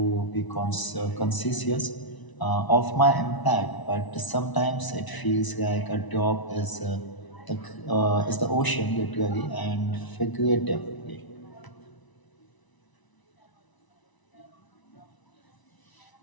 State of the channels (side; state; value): right; late; 1.0 ms